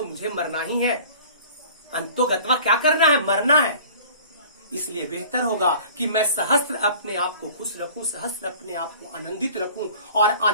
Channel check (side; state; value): both; inverted; correlation -0.46